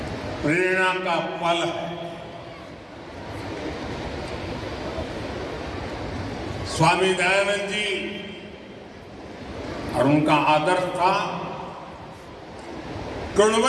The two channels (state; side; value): identical; both; correlation 1.00